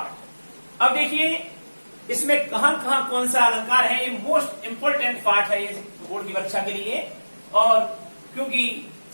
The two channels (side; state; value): both; inverted; correlation -1.00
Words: अब देखिए इसमें कहां कहां कौन सा अलंकार है, ये मोस्ट इंपोर्टेंट पार्ट है ये बोर्ड की परीक्षा के लिए। और क्योंकि